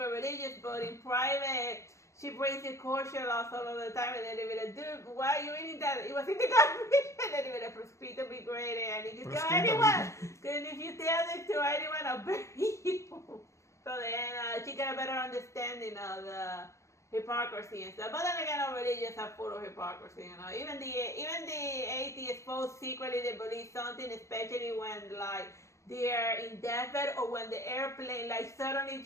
religious, but in private she breaks the kosher laws all of the time, and then they be like, dude, why are you eating that? It was in the garbage. And then they be like, proscrito be great, and if you tell anyone, and if you tell it to anyone, I'll bury you. So then she got a better understanding of the hypocrisy and stuff. But then again, our religions are full of hypocrisy, you know. Even the atheists both secretly they believe something, especially when like they're in deathbed or when the airplane like suddenly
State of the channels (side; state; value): right; late; 0.14 ms